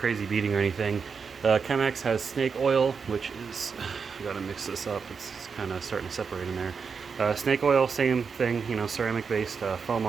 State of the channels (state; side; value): quieter; left; 5.7 dB